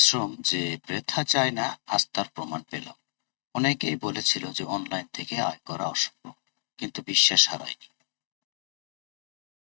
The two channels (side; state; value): right; silent; digital silence